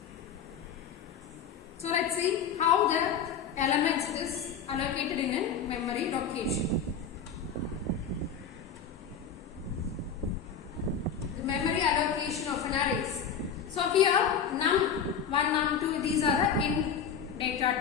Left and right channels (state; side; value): quieter; right; 6.9 dB